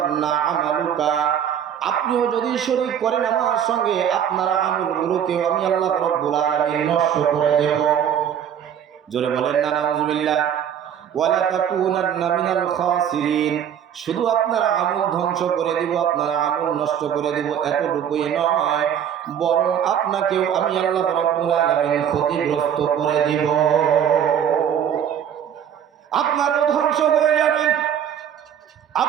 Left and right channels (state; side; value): quieter; left; 9.1 dB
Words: আমালুকা, আপনিও যদি শরীক করেন আমার সঙ্গে, আপনার আমলগুলোকে আমি আল্লাহ রাব্বুল আলামিন নষ্ট করে দেব। জোরে বলেন না নাউযুবিল্লাহ। ওয়ালা তাকুনান্না মিনাল খাসিরিন, শুধু আপনার আমল ধ্বংস করে দিব, আপনার আমল নষ্ট করে দিব এতটুকুই নয়, বরং আপনাকেও আমি আল্লাহ রাব্বুল আলামিন ক্ষতিগ্রস্ত করে দিব। আপনারও ধ্বংস হয়ে যাবেন,